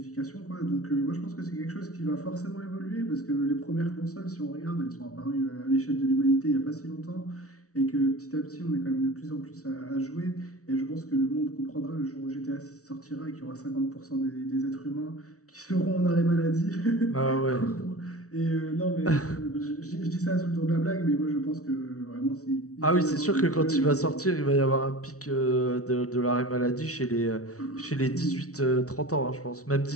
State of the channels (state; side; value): late; right; 0.65 ms